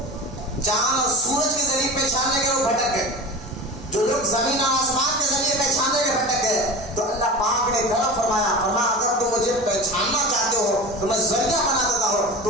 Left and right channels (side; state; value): both; normal; correlation 0.31